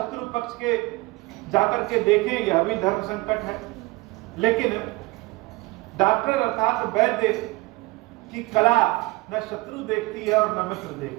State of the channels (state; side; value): quieter; left; 22.2 dB